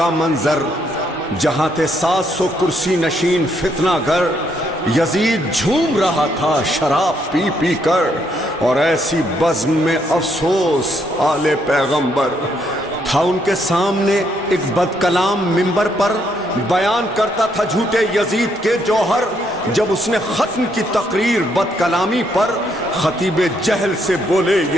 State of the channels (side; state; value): both; normal; correlation 0.73